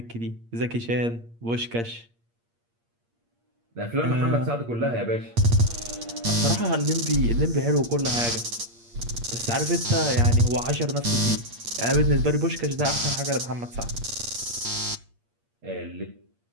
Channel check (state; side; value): late; left; 8.6 ms